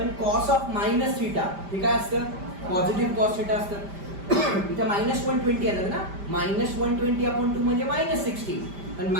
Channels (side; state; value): left; late; 5.1 ms